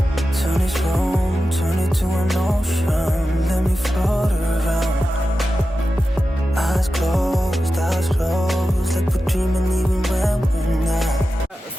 Turn this room, turn it to an ocean. Let me float around. Eyes closed, like we're dreaming even when we're not.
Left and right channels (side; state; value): both; normal; correlation 0.92